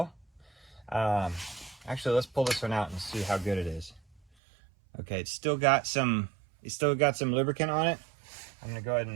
Actually, let's pull this one out and see how good it is. Okay, it's still got some lubricant on it. I'm gonna go ahead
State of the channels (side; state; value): left; drops out; at 4.2 s